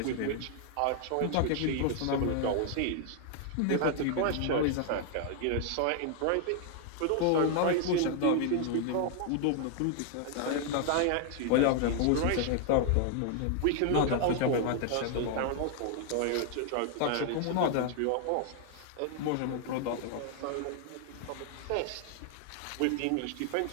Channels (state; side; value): different; both; correlation 0.00